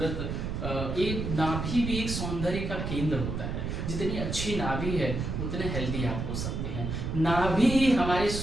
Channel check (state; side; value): noise; right; rumble, 3 dB below the sound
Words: एक नाभि भी एक सौंदर्य का केंद्र होता है। जितनी अच्छी नाभि है उतने हेल्दी आप हो सकते हैं। नाभि हमारे